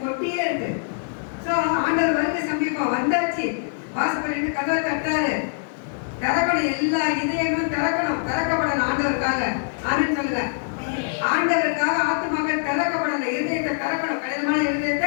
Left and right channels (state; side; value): silent; right; digital silence